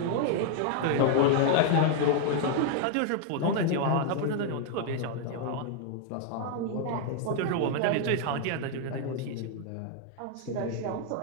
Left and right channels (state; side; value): different; both; correlation 0.00